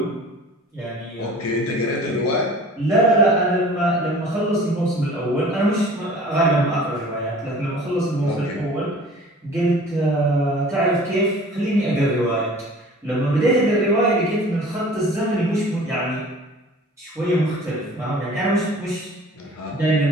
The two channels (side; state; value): both; normal; correlation 0.46